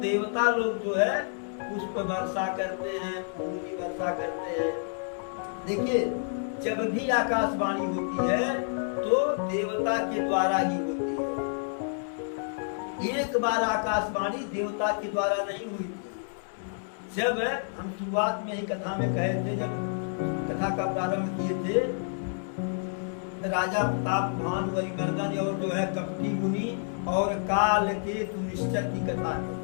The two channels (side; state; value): right; silent; 59 dB below the other